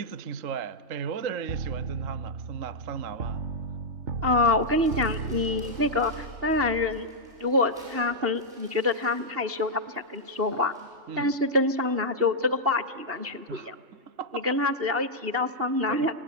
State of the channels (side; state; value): left; late; 2.8 ms